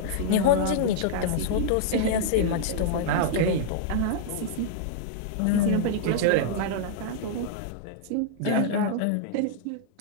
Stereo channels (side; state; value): both; different; correlation -0.02